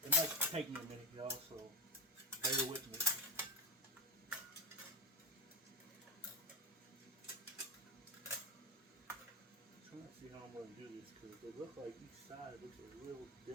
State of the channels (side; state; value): both; normal; correlation 0.19